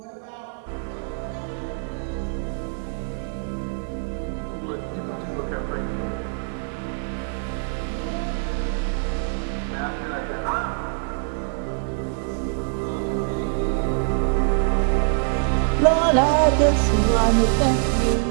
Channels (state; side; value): silent; left; 62 dB below the other